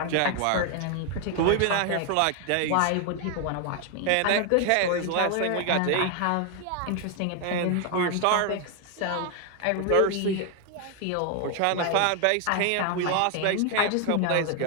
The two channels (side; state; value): both; different; correlation 0.00